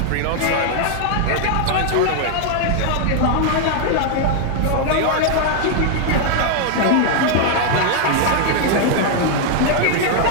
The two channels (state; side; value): different; both; correlation 0.00